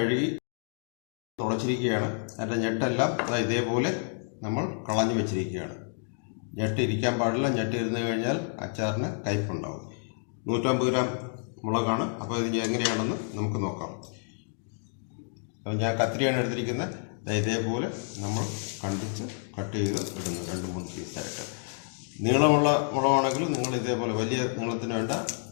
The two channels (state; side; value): silent; right; digital silence